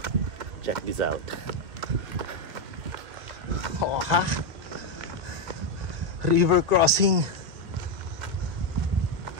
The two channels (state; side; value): late; left; 1.8 ms